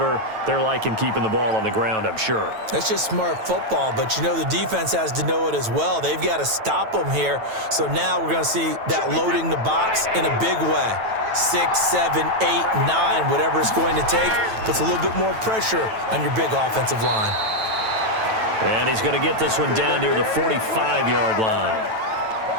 they're liking keeping the ball on the ground, I'm sure. That's just smart football, but you know the defense has to know it as well. They've got to stop them here. So now we're going to see that loading the box in a big way. 6, 7, 8, 9, whatever it's going to take, puts a little bit more pressure on your big offensive line. And he's going to get this one down near the 45-yard line.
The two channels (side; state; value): left; late; 9.1 ms